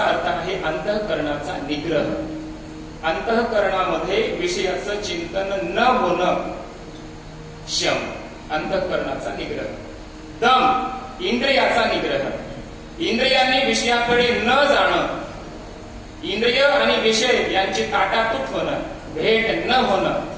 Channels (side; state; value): both; identical; correlation 1.00